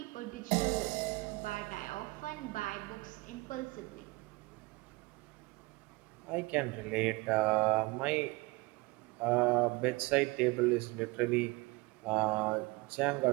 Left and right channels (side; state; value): left; quieter; 24.3 dB